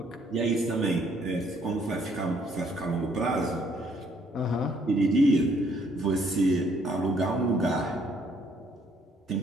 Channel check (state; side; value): normal; both; correlation 0.66